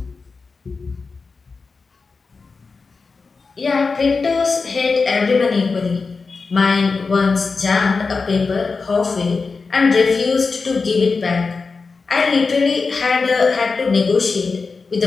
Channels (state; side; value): quieter; right; 4.5 dB